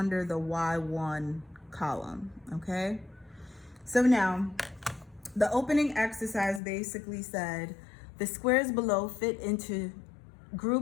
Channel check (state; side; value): drops out; right; at 6.6 s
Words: the y1 column, okay? So now, the opening exercise basically said, the squares below fit into